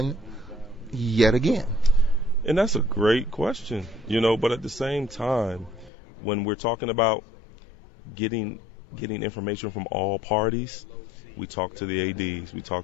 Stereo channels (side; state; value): right; drops out; at 5.9 s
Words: yet again? And that's a great question, but at the same time, when we're talking about getting information from all parties, we talk to the ADs, we